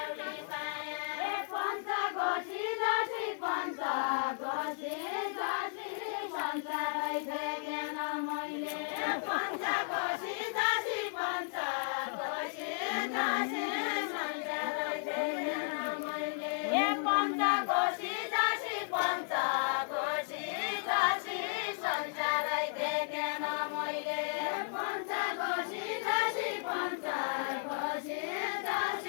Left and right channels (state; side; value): silent; right; 55 dB below the other